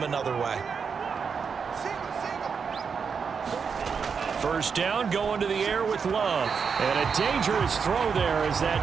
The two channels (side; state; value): left; quieter; 6.0 dB